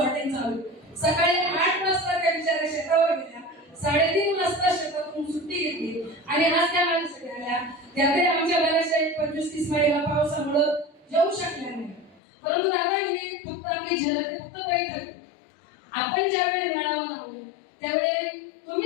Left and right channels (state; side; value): drops out; right; at 12.2 s